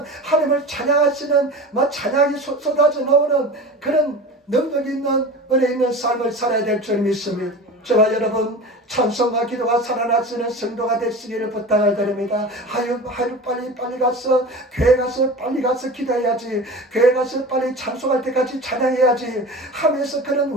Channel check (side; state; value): both; normal; correlation 0.33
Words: 하나님을 찬양하시는 찬양이 쏟아져 나오는 그런 능력 있는 은혜 있는 삶을 살아야 될 줄 믿습니다. 저와 여러분 찬송과 기도가 살아나시는 성도가 되시기를 부탁을 드립니다. 하루 빨리 가서 교회 가서 빨리 가서 기도해야지, 교회 가서 빨리 찬송할 때까지 찬양해야지 하면서 그런